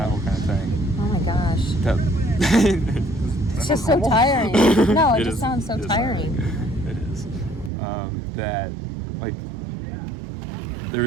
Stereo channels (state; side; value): drops out; left; at 7.7 s